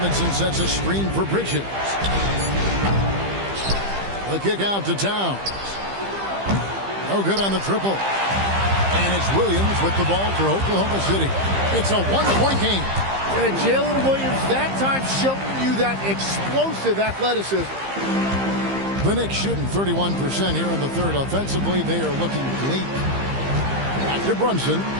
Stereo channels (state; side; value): late; left; 15 ms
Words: sets a screen for Bridges. The kick out to Towns. No good on the triple. And it's Williams with the ball for Oklahoma City. It's a one-point game. And Jalen Williams that time showing you that explosive athleticism. The Knicks shooting 31% here in the third. Offensively, they are looking bleak. Back to Brunson.